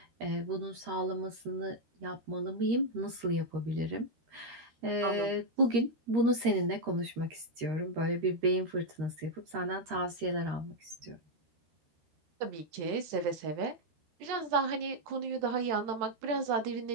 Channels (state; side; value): late; left; 13 ms